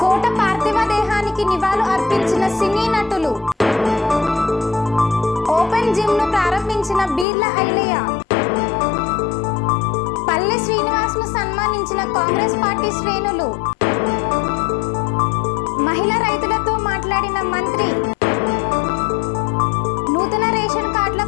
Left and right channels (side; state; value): right; drops out; at 7.2 s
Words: కోట పార్థివ దేహానికి నివాళులు అర్పించిన సినీ నటులు. ఓపెన్ జిమ్ ను ప్రారంభించిన బీర్ల ఐలయ్య. పల్లె శ్రీనివాస్ ను సన్మానించిన కాంగ్రెస్ పార్టీ శ్రేణులు. మహిళా రైతులతో మాట్లాడిన మంత్రి. నూతన రేషన్ కార్డుల